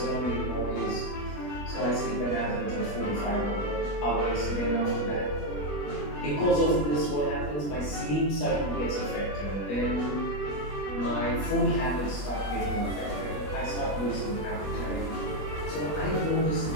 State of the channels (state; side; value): late; right; 21 ms